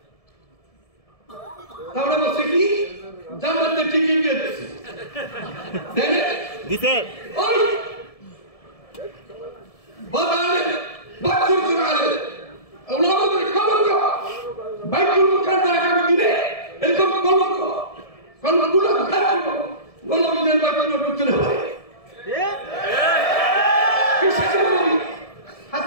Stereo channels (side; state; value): right; late; 1.7 ms